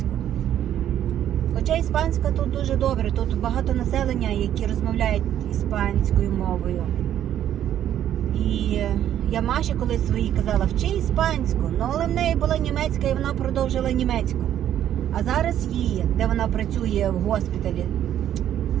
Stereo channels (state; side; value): quieter; left; 10.9 dB